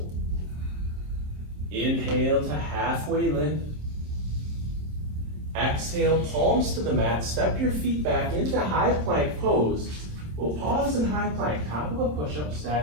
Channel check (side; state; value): left; late; 27 ms